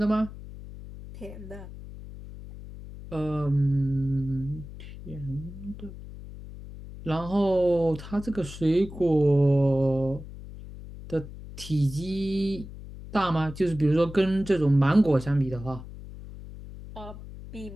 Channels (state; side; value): noise; left; hum, 13 dB below the sound